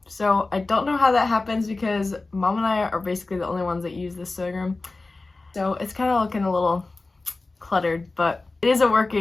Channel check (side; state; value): right; quieter; 3.4 dB